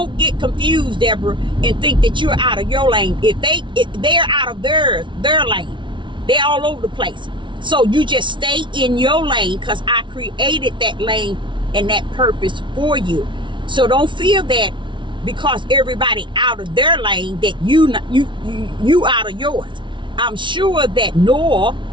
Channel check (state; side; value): late; left; 0.24 ms